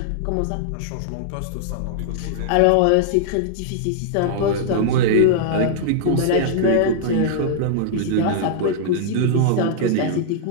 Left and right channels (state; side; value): different; both; correlation -0.01